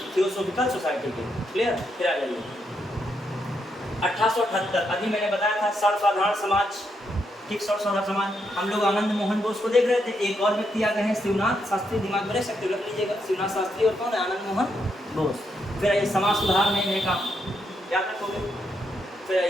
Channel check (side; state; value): both; normal; correlation 0.79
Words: थियोसॉफिकल सोसाइटी के। क्लियर? फिर आ जाइए 1878। अभी मैंने बताया था सर्वसाधारण समाज, ठीक, सर्वसाधारण समाज। हम लोग आनंद मोहन बोस को देख रहे थे। एक और व्यक्ति आ गए हैं शिवनाथ शास्त्री, दिमाग में रख सकते हो, रख लीजिएगा। शिवनाथ शास्त्री और कौन है? आनंद मोहन बोस। फिर आइए समाज सुधार में इन्हें काम याद रखोगे। फिर